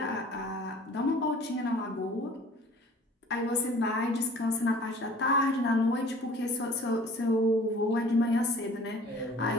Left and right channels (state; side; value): normal; both; correlation 0.49